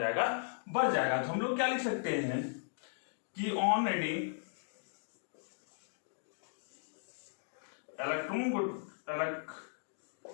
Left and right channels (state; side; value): silent; right; digital silence